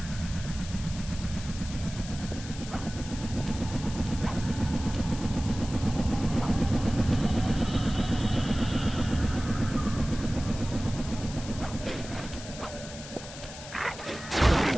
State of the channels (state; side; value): noise; left; hiss, 13 dB below the sound